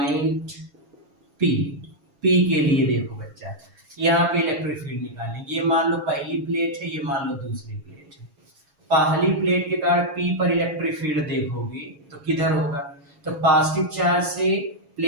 P के लिए देखो बच्चा, यहाँ पे इलेक्ट्रिक फील्ड निकालेंगे। ये मान लो पहली प्लेट है, ये मान लो दूसरी प्लेट है। पहली प्लेट के कारण P पर इलेक्ट्रिक फील्ड देखोगे तो किधर होगा, तो पॉजिटिव चार्ज से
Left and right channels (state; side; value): late; left; 7.3 ms